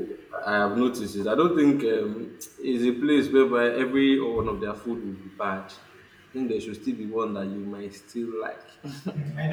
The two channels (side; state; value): both; identical; correlation 1.00